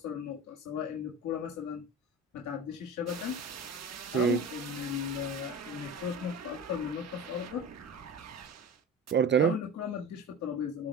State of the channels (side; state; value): both; normal; correlation 0.31